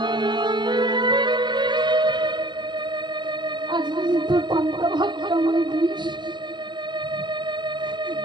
আজ যদি তোর পান্তা ভাত আমায় দিস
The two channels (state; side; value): late; left; 0.22 ms